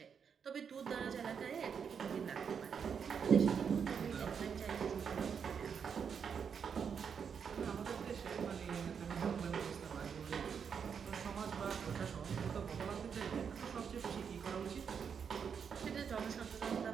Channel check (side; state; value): left; quieter; 6.8 dB